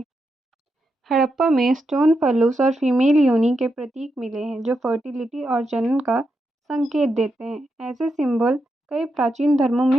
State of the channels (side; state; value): both; normal; correlation 0.85